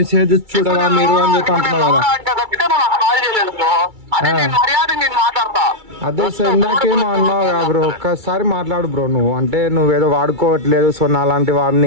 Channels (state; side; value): late; left; 2.3 ms